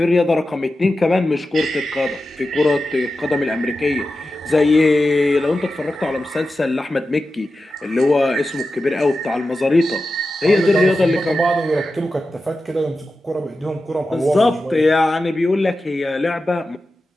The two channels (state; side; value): normal; both; correlation 0.92